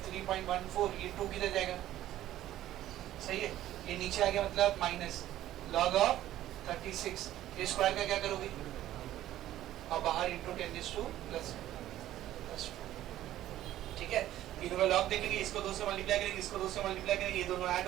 3.14, ये 2 किधर जाएगा? सही है, ये नीचे आ गया, मतलब माइनस लॉग ऑफ 36, ये स्क्वायर का क्या करोगे? और बाहर इंटू 10 + +2, ठीक है? तीनों का लॉग देखेंगे, इसको 2 से मल्टीप्लाई करेंगे, इसको 2 से मल्टीप्लाई करेंगे, ये दोनों ऐड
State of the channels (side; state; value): left; quieter; 13.5 dB